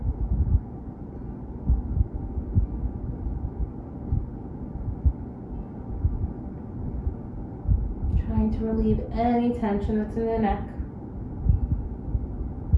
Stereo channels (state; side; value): identical; both; correlation 1.00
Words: Trying to relieve any tension that's in the neck.